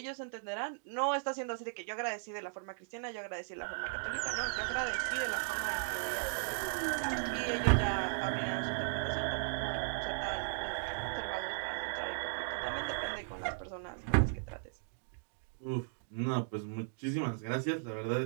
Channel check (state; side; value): silent; left; digital silence